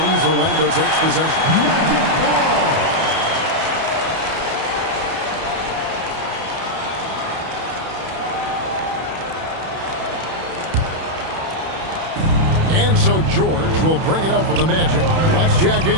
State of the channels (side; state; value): left; late; 31 ms